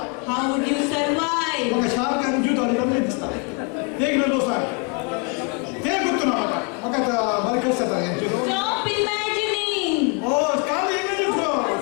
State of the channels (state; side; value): quieter; right; 33.5 dB